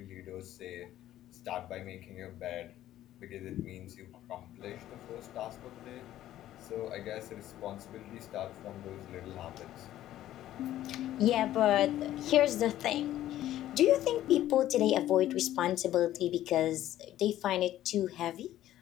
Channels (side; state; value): right; quieter; 13.2 dB